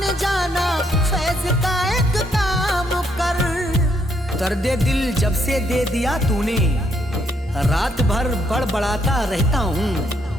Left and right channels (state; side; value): normal; both; correlation 0.73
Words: दर्द दिल जब से दे दिया तूने, रात भर बड़बड़ाता रहता